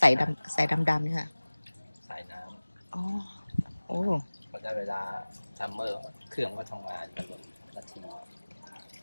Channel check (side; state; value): both; inverted; correlation -1.00